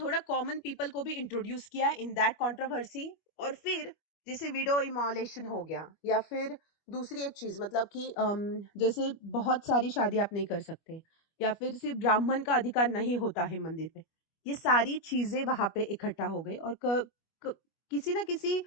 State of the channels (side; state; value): right; late; 25 ms